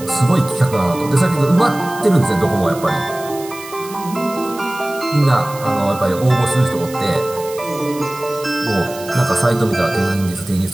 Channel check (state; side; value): noise; right; hiss, 16 dB below the sound